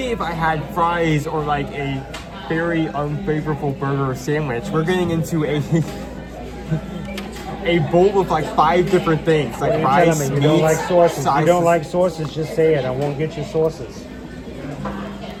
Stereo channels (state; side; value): identical; both; correlation 1.00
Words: if I had fries or like a very unfavorable burger or sandwich, we're getting into a a bowl with like 5 different things, like What are fries, you telling me? You don't meats, like sauces. You sauces. don't like sauces, just say it. I won't get you sauces.